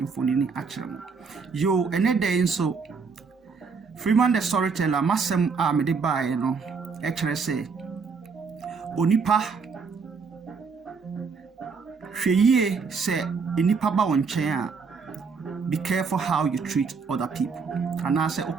a kyerɛ mo. Yo ene day nso Freeman the storyteller masem me de bae no e kyerɛ se onipa hweyie se enipa ba won chen a be careful how you treat other people. Ana se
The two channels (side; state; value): left; quieter; 5.1 dB